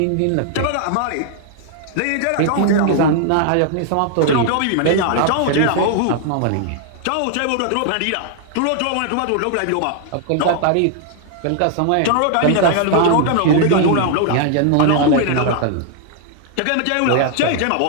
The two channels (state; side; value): different; both; correlation 0.00